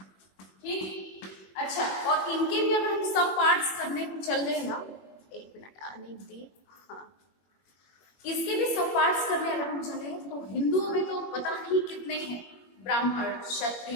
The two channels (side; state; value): right; late; 21 ms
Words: ठीक, अच्छा, और इनके भी अगर हम सब पार्ट्स करने को चल रहे हैं ना, एक मिनट आने दी, हाँ, इसके भी सब पार्ट्स करने अगर हम चले तो हिंदुओं में तो पता नहीं कितने हैं, ब्राह्मण,